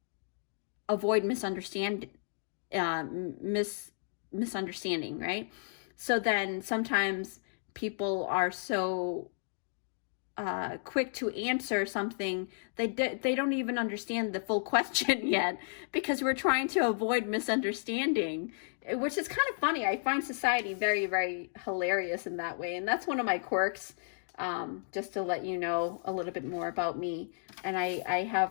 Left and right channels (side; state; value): right; silent; digital silence